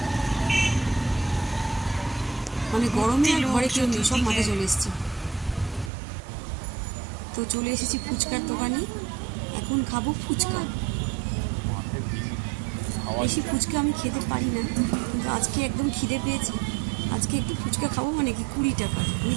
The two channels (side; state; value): left; drops out; at 5.9 s